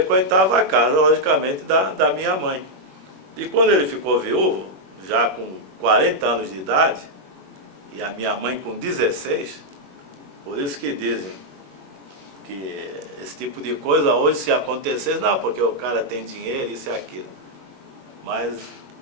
a casa, logicamente, da minha mãe. E quando ele ficou viúvo, já com 40 anos de idade, e a minha mãe com 16, por isso que dizem que esse tipo de coisa hoje, se acontecesse, não, porque o cara tem dinheiro, isso e aquilo. Mas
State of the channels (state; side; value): late; left; 21 ms